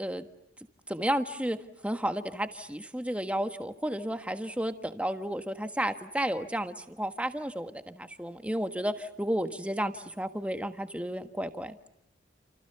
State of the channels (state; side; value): normal; both; correlation 0.86